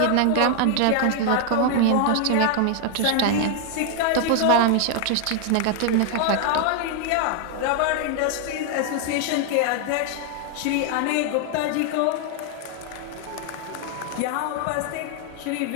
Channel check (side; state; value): both; different; correlation 0.00